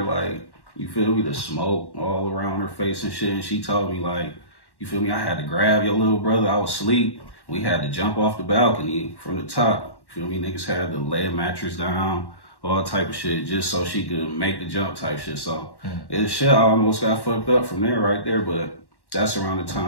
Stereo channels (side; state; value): right; late; 1.1 ms